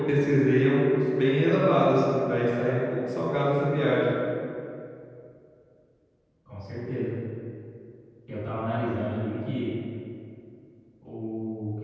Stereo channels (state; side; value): identical; both; correlation 1.00